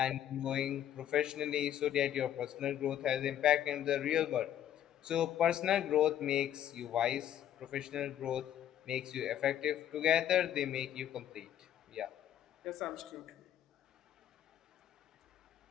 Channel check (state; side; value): quieter; right; 11.0 dB